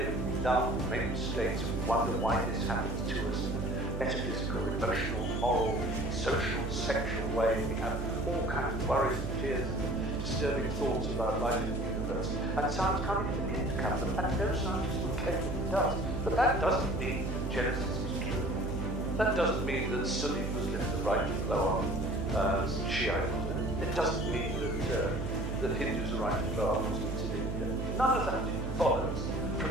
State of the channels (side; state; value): right; noise; hum, 3 dB below the sound